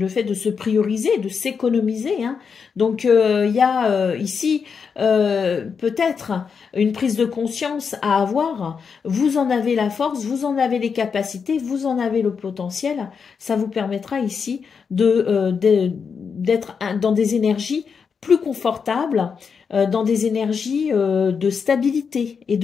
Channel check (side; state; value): right; quieter; 6.0 dB